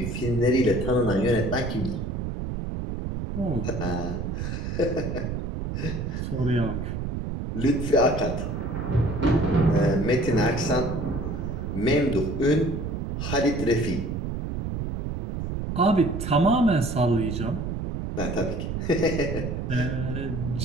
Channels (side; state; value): right; noise; rumble, 4 dB below the sound